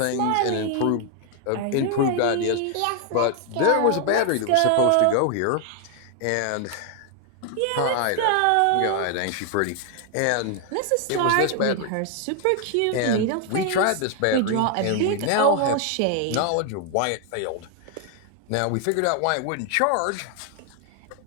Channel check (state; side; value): different; both; correlation 0.00